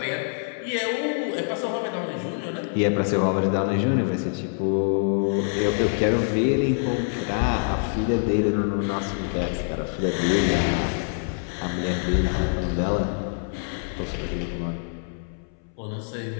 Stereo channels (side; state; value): right; silent; 62 dB below the other